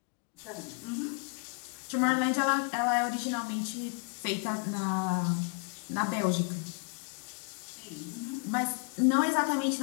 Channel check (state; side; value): quieter; right; 39.4 dB